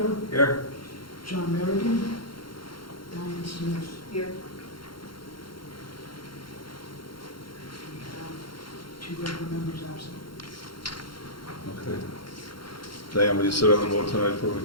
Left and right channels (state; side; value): late; right; 0.73 ms